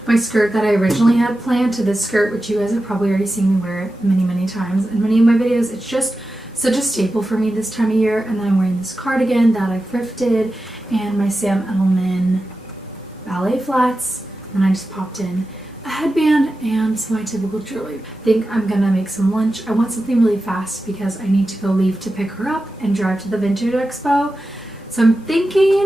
my skirt that I originally had planned to this skirt, which you guys have probably already seen me wear many, many times in many of my videos. It's just such a staple for me this time of year. And then I'm wearing this cardigan that I thrifted and my Sam Edelman ballet flats. And I just popped in a headband and some of my typical jewelry. I think I'm gonna make some lunch. I want something really fast because I need to go leave to pick her up and drive to the Vintage Expo. So I'm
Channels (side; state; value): both; normal; correlation 0.92